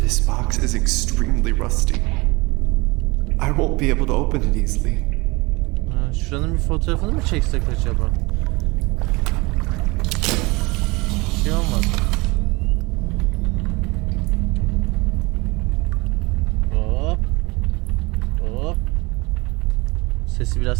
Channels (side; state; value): left; quieter; 24.7 dB